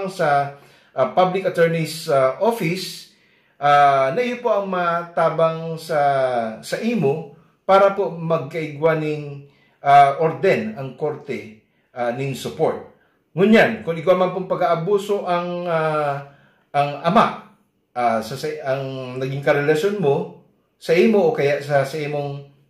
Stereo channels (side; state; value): both; identical; correlation 1.00